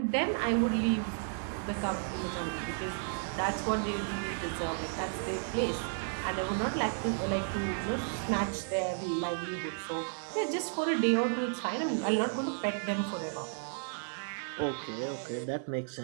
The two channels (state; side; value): silent; left; 56 dB below the other